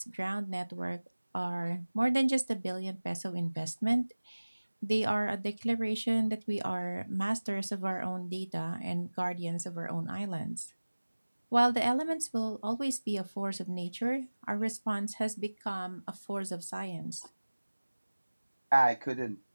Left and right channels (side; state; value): both; inverted; correlation -1.00